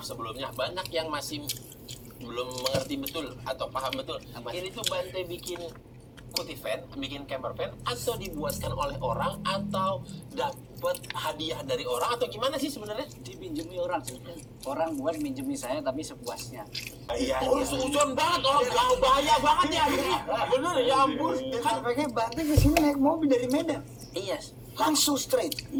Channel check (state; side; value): identical; both; correlation 1.00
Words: sebelumnya, banyak yang masih belum mengerti betul atau paham betul. Ini tuh Bante bikin kuti van, bikin camper van, atau dibuatkan oleh orang, atau dapat hadiah dari orang, atau gimana sih sebenarnya? Dipinjemi orang sih. Orang buat minjemi saya tapi sepuasnya. Iya. Sujon banget, orang gak bahaya banget ya ini. Bener ya ampun. Kan pakai Bante ke sini naik mobil dari Medan. Iya. Langsung straight.